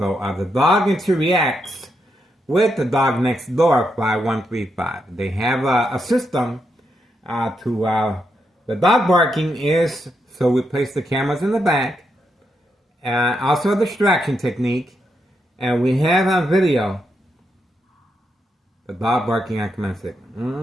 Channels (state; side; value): normal; both; correlation 0.82